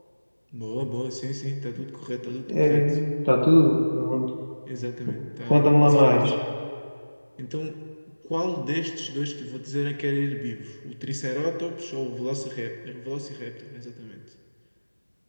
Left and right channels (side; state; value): both; inverted; correlation -1.00